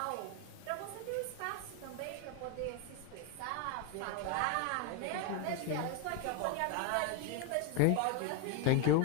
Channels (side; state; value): both; different; correlation 0.01